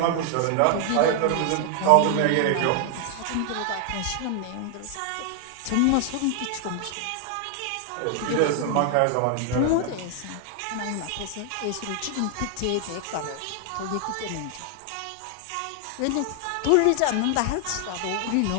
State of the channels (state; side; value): different; both; correlation 0.00